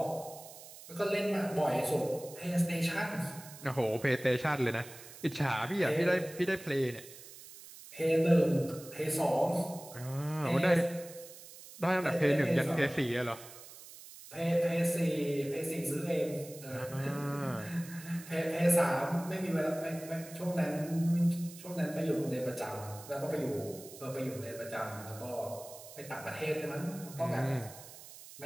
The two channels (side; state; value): right; noise; hiss, 17 dB below the sound